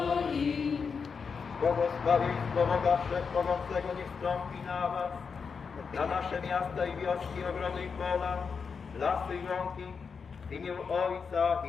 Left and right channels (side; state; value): right; quieter; 5.7 dB